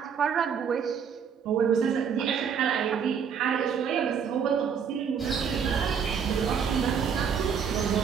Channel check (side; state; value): left; quieter; 7.0 dB